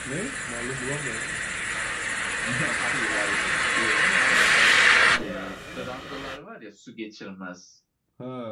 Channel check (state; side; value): identical; both; correlation 1.00